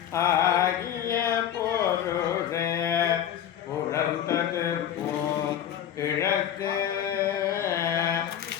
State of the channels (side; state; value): right; quieter; 10.1 dB